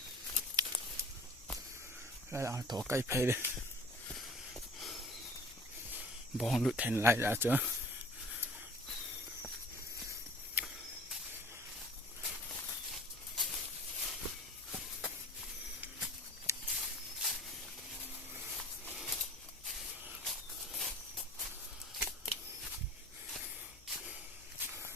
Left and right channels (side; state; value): left; noise; hum, 24 dB below the sound